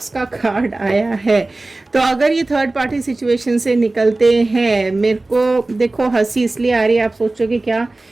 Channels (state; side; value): quieter; left; 3.0 dB